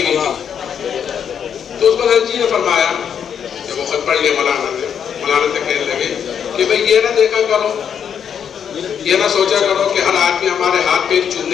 ہوئی تھی. تو اس کو حضرت جی نے فرمایا, جب وہ خط پڑھ لیا مولانا سے کہنے لگے کہ بھئی یہ نہ دیکھا کرو, یہ نہ سوچا کرو کہ ہر آدمی ہمارے ہاتھ پہ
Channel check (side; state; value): right; quieter; 8.0 dB